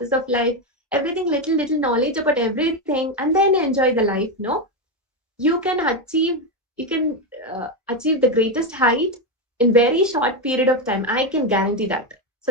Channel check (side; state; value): both; normal; correlation 0.09